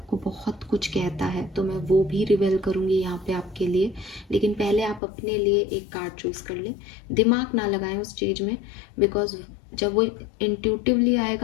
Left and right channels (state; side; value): drops out; right; at 5.0 s